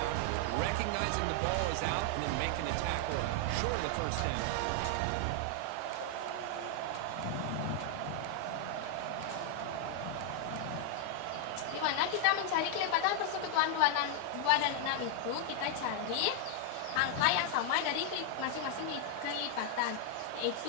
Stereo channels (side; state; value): both; different; correlation 0.00